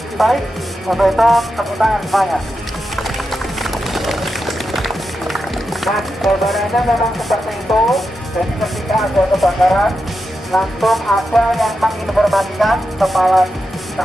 baik, untuk itu tepuk tangan semuanya. Nah, gambarannya memang seperti itu. Jadi ketika ada kebakaran, langsung ada yang menginformasikan kepala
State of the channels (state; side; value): normal; both; correlation 0.88